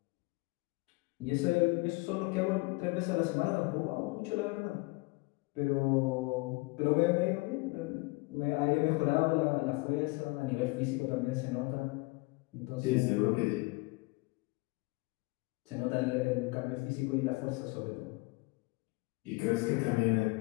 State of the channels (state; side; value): quieter; right; 25.3 dB